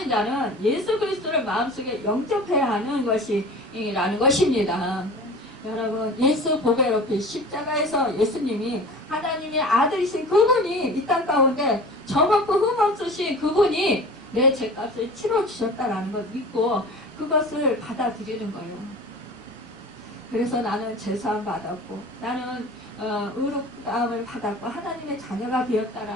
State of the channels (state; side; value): normal; both; correlation 0.39